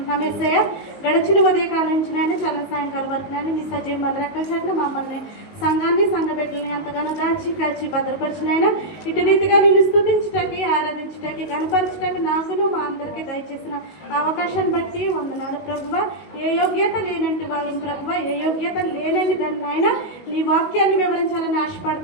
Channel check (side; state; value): right; late; 19 ms